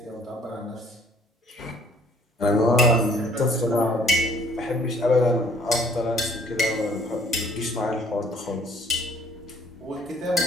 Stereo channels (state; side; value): normal; both; correlation 0.58